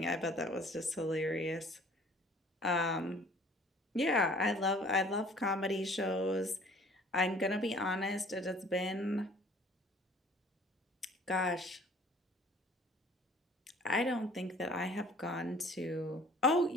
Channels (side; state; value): both; normal; correlation 0.52